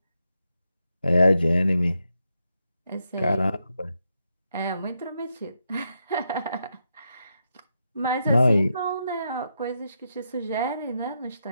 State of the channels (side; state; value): both; inverted; correlation -0.83